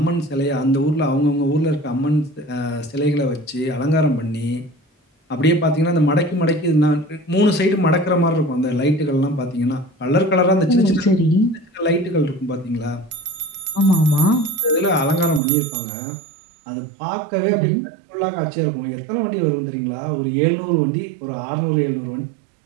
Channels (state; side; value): drops out; left; at 15.4 s